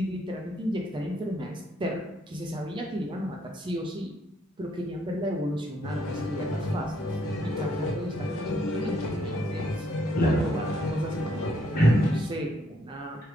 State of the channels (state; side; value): normal; both; correlation 0.72